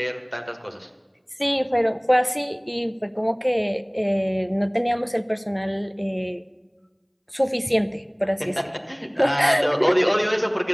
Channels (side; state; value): both; identical; correlation 1.00